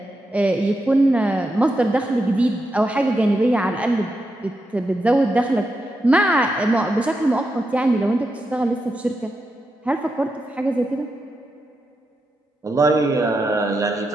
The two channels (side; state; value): both; normal; correlation 0.86